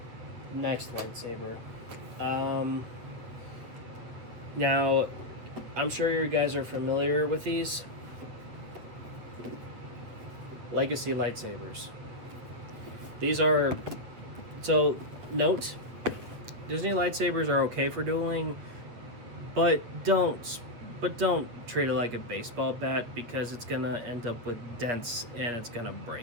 Next lightsaber. Now, I'm sure you guys are familiar with these. Legacy lightsabers. These are... So, note, Disney lightsabers are okay for dueling, but don't treat it like a baseball bat because it's gonna end up with dents and it's gonna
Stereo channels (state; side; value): late; left; 8.6 ms